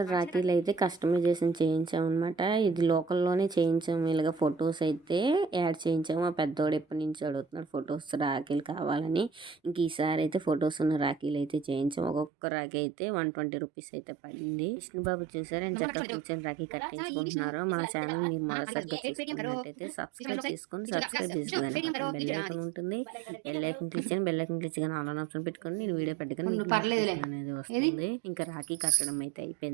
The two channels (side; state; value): left; drops out; at 12.3 s